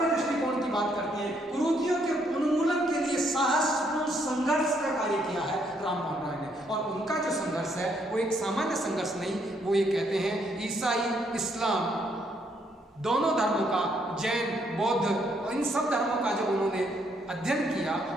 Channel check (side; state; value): both; normal; correlation 0.71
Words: दृष्टिकोण की बात करते हैं। कुरीतियों के उन्मूलन के लिए साहसपूर्ण संघर्ष का कार्य किया है राममोहन राय ने, और उनका जो संघर्ष है वो एक सामान्य संघर्ष नहीं, वो ये कहते हैं ईसाई, इस्लाम दोनों धर्मों का, जैन, बौद्ध और इन सब धर्मों का जो उन्होंने अध्ययन किया,